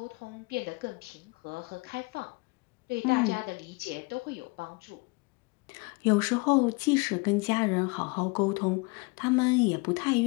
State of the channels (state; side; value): quieter; right; 27.9 dB